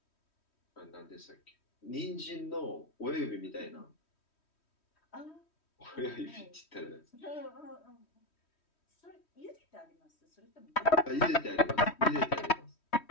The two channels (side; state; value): right; late; 3.1 ms